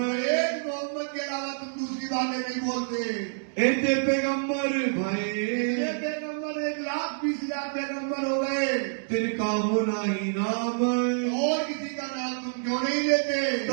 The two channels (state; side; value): silent; left; digital silence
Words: एक मोहम्मद के अलावा तुम दूसरी बातें नहीं बोलते। इतने पैगम्बर भाई, ये पैगम्बर 1,20,000 पैगम्बर हो गए, तिनका होना ही नाम, और किसी का नाम तुम क्यों नहीं लेते?